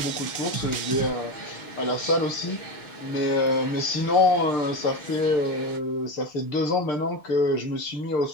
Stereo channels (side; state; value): right; late; 6.7 ms